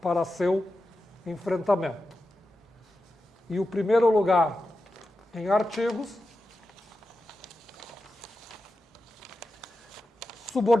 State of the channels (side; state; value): both; normal; correlation 0.91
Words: para seu enfrentamento. E o primeiro lugar em artigos: